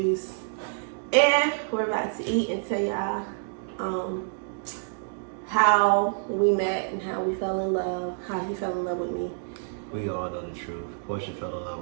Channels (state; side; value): silent; left; digital silence